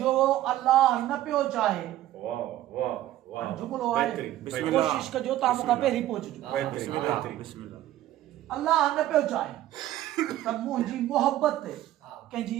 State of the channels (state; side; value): quieter; left; 14.0 dB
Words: जो अल्लाह न पियो चाहे जुमलो आहे कोशिश कजो तव्हां मूंखां पहिरीं पहुचजो अल्लाह न पियो चाहे त मुंहिंजी मोहबत ते कंहिंजी